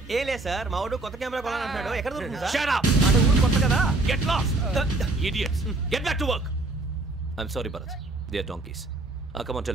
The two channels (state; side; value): quieter; left; 3.0 dB